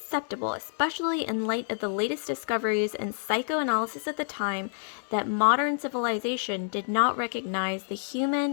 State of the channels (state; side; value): silent; right; digital silence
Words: especially in light of the latest discoveries in psychoanalysis at the time, that modern civilization did not recognize the human